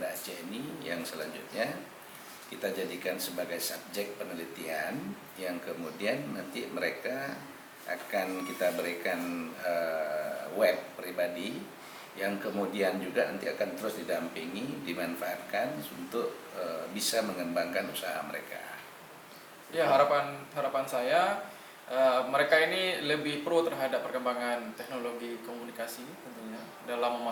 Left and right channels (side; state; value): both; identical; correlation 1.00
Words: Aceh ini, yang selanjutnya kita jadikan sebagai subjek penelitian, yang kemudian nanti mereka akan kita berikan web pribadi, yang kemudian juga nanti akan terus didampingi, dimanfaatkan untuk bisa mengembangkan usaha mereka. Ya, harapan saya mereka ini lebih pro terhadap perkembangan teknologi komunikasi tentunya dalam